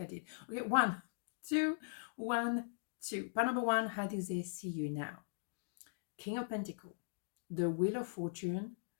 I did. Okay, 1, 2, 1, 2. Part number 1, how do they see you now? King of Pentacle, the Wheel of Fortune,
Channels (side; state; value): right; silent; digital silence